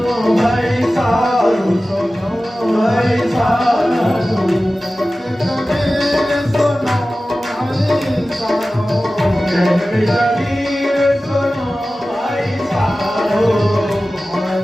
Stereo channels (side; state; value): both; normal; correlation 0.96